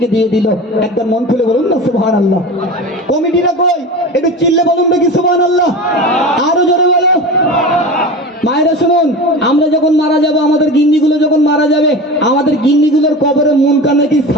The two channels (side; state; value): both; normal; correlation 0.30